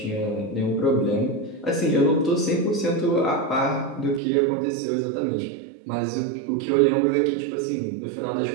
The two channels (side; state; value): left; drops out; at 4.2 s